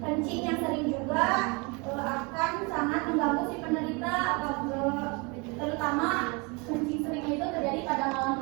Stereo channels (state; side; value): quieter; left; 29.7 dB